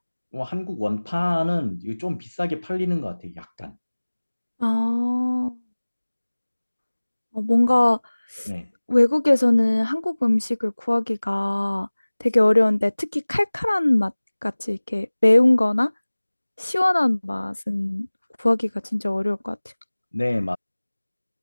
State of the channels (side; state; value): both; inverted; correlation -1.00